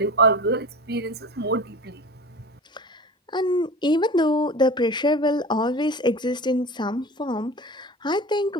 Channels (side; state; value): both; normal; correlation 0.34